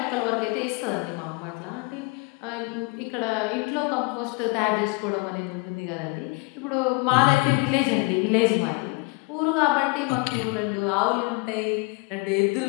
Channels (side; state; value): right; quieter; 27.8 dB